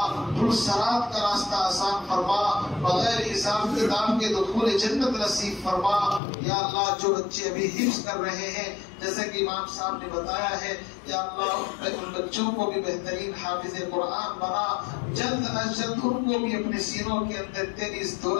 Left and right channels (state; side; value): drops out; right; at 6.2 s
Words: پرسرات کا راستہ آسان فرما، بغیر حساب کتاب کے دخول جنت نصیب فرما۔ یا اللہ جو بچے ابھی حفظ کر رہے ہیں، جیسے کہ امام صاحب نے بتایا ہے، یا اللہ ان بچوں کو بھی بہترین حافظ قرآن بنا، جلد از جلد ان کو بھی اپنے سینوں کے اندر تیری اس